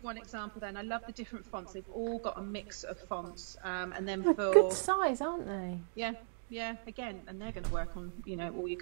one example then. I love the different fonts. They've all got a mix of fonts. And then for good size, aren't they? Yeah, again, and they're going to work on, you know, all your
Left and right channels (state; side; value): silent; left; digital silence